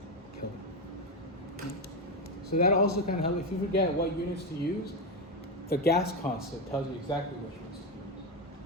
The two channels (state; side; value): normal; both; correlation 0.10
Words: Kelvin. So that also kind of helps. If you forget what units to use, the gas constant tells you exactly which units to